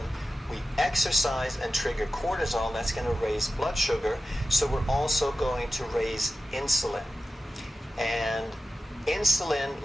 we exercise and trigger cortisol, that's going to raise blood sugar. So we're also going to raise insulin. And insulin,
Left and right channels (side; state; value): both; normal; correlation 0.93